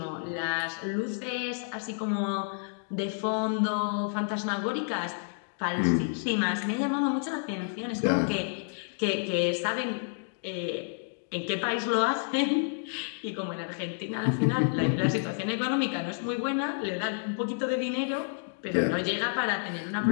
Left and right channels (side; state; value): right; silent; digital silence